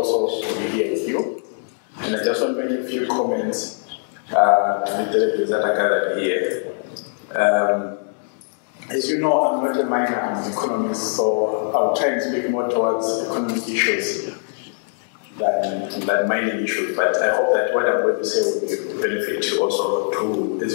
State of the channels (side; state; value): right; silent; 59 dB below the other